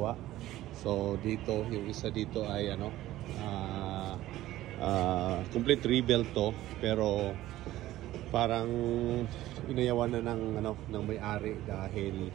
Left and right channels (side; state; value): left; quieter; 15.1 dB